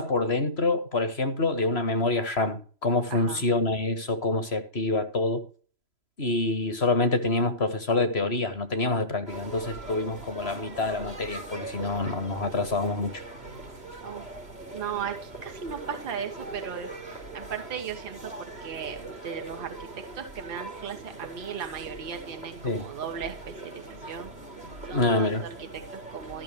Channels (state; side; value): late; right; 3.0 ms